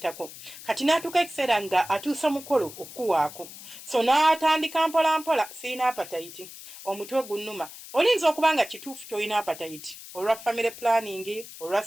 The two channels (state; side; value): noise; left; hiss, 15 dB below the sound